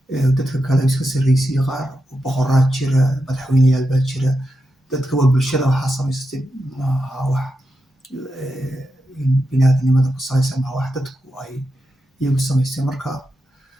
dadka kale iska sarreysiiya qaar boqoraa jira madaxweyneyaal baa jira dadka waa bulshada waxaa samaysatay maaha wax bini aadanimada ku salaysan maaha wax dadku ay iyagu samaysteen marka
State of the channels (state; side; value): normal; both; correlation 0.87